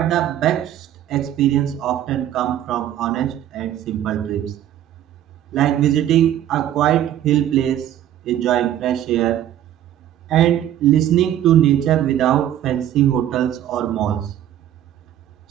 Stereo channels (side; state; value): left; quieter; 11.7 dB